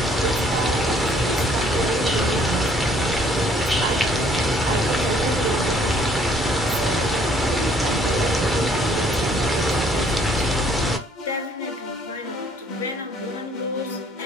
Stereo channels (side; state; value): both; normal; correlation 0.61